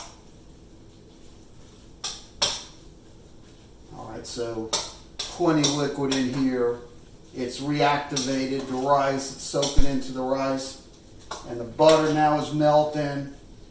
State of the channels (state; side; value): identical; both; correlation 1.00